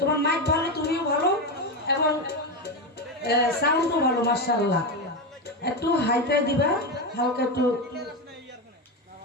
মাইক ভালো তুমিও ভালো এবং সাউন্ডও ভালো মাশাআল্লাহ একটু হাইটাই দিবা হালকা একটু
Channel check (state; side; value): normal; both; correlation 0.14